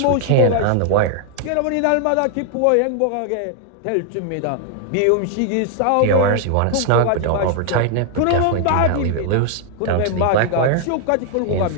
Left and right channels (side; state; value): both; different; correlation 0.00